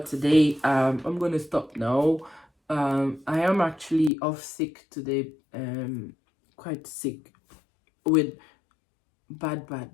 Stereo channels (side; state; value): right; drops out; at 4.1 s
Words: today. I'm going to stop now. I am actually off sick today, quite sick with